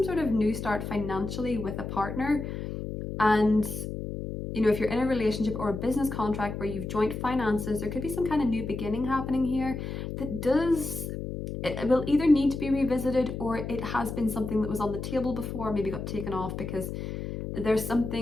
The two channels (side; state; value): left; noise; hum, 6 dB below the sound